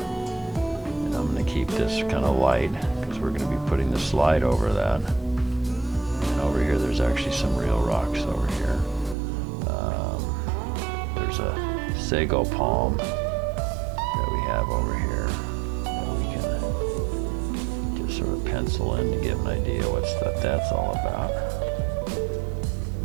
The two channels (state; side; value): drops out; left; at 9.2 s